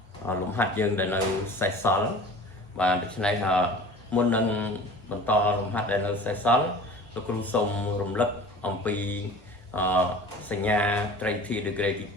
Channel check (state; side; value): normal; both; correlation 0.41